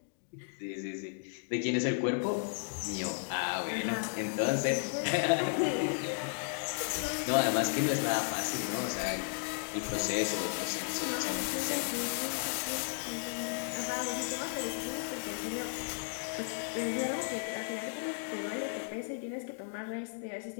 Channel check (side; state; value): right; silent; digital silence